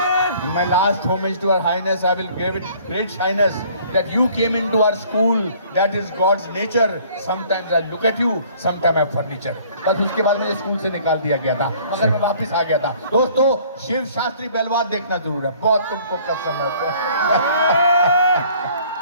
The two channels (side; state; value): both; inverted; correlation -0.56